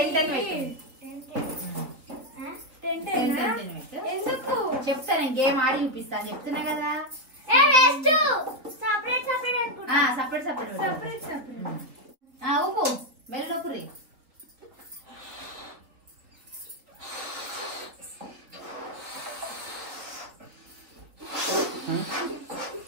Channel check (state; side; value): late; left; 4.0 ms